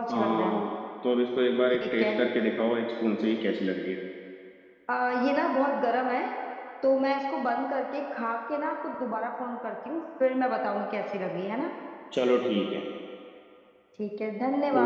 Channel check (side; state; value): both; identical; correlation 1.00